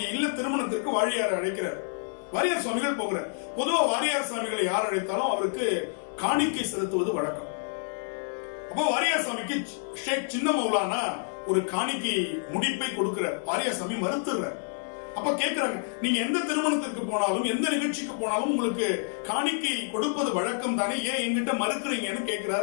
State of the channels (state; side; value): silent; right; digital silence